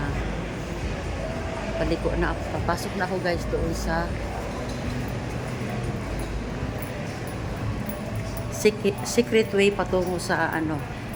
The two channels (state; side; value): identical; both; correlation 1.00